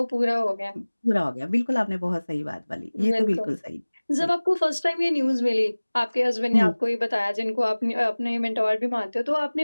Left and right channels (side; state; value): both; inverted; correlation -1.00